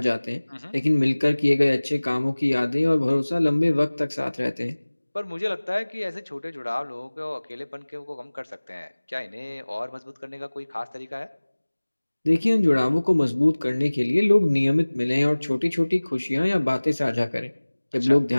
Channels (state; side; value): inverted; both; correlation -1.00